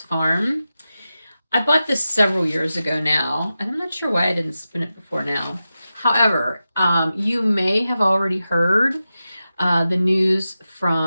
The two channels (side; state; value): both; inverted; correlation -0.93